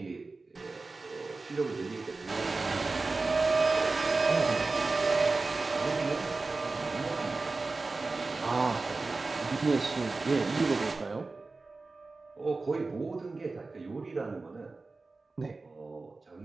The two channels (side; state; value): left; quieter; 3.7 dB